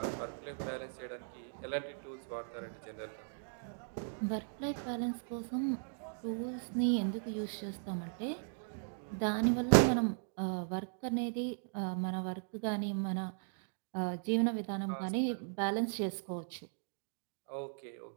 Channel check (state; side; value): silent; left; digital silence